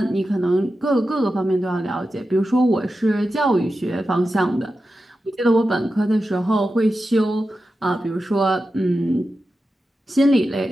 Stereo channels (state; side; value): normal; both; correlation 0.91